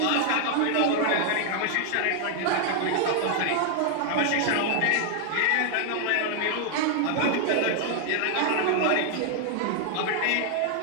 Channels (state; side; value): different; both; correlation 0.00